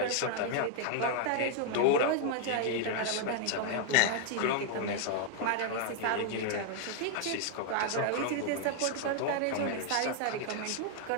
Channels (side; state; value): both; different; correlation 0.00